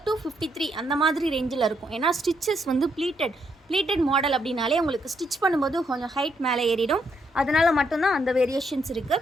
to 53 அந்த மாதிரி ரேஞ்சில் இருக்கும். ஏன்னா ஸ்டிச்சஸ் வந்து ப்ளீட்டட் மாடல் அப்படின்னாலே உங்களுக்கு ஸ்டிச் பண்ணும்போது கொஞ்சம் ஹைட் மேலே ஏறிடும். அதனால் மட்டும்தான் அந்த வேரியேஷன்ஸ்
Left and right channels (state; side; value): normal; both; correlation 0.76